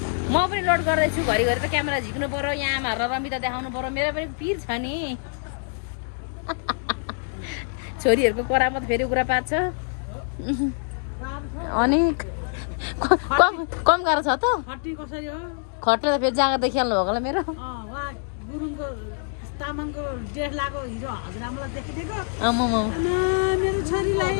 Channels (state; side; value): silent; right; digital silence